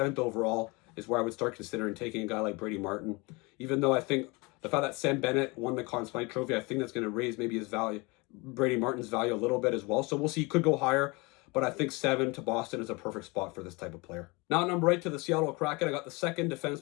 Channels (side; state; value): right; quieter; 26.5 dB